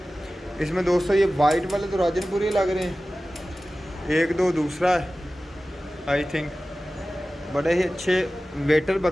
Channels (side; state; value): both; normal; correlation 0.96